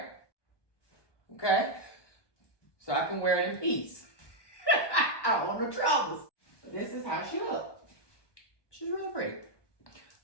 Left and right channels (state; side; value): late; right; 1.2 ms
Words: Okay? So I can wear it in peace. I don't want no troubles. This is how she looks. She's really pretty.